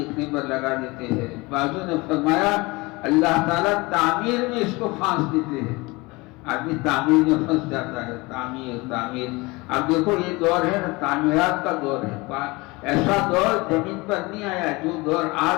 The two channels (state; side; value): quieter; right; 23.9 dB